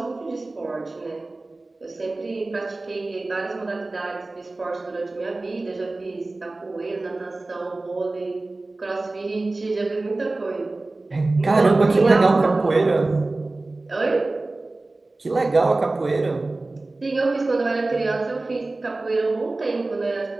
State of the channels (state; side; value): quieter; left; 3.1 dB